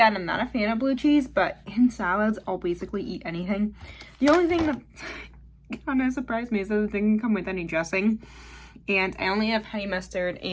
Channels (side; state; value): both; identical; correlation 1.00